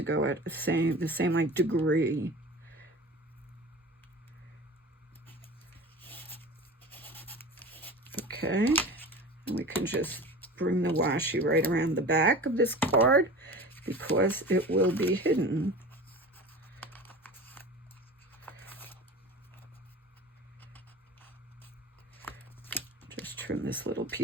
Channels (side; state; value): both; normal; correlation 0.36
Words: go at the same like degree. Okay, and we can just bring the washi right around the back of this card because it will be hidden. Just trim this little